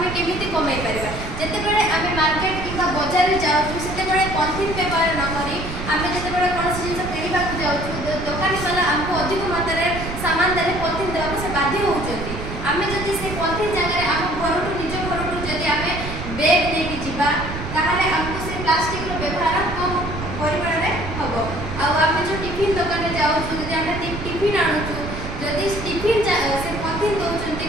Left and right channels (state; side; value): noise; right; rumble, 7 dB below the sound